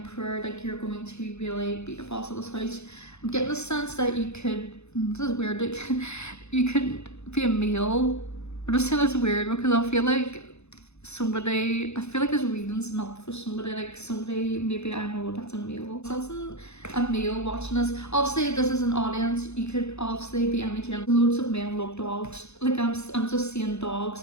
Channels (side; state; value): right; late; 0.81 ms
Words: like you're going to really be the boss of this house. I'm getting the sense that you could, this is weird, like, you could be a male. I'm just saying it's weird because I feel like this reading's not for somebody, like somebody, maybe I know that's a male. Sensing a male watching this. Obviously this is an audience, you could obviously be any gender. Loads of men love dogs. Like I'm just seeing dogs.